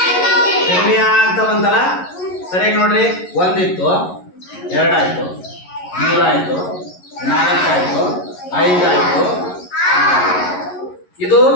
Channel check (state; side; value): late; right; 11 ms